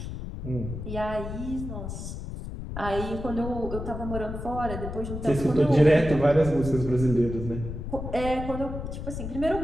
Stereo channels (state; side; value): noise; left; rumble, 7 dB below the sound